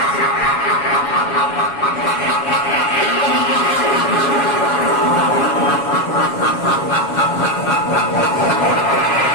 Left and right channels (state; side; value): late; right; 7.2 ms